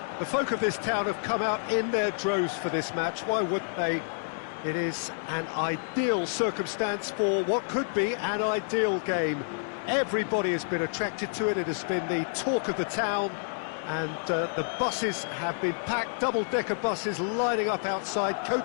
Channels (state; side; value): silent; right; digital silence